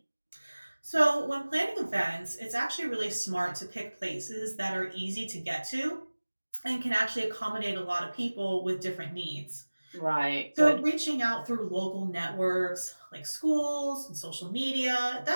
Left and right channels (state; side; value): inverted; both; correlation -1.00